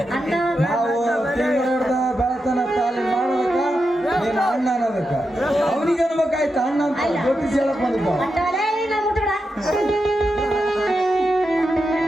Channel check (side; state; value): both; normal; correlation 0.87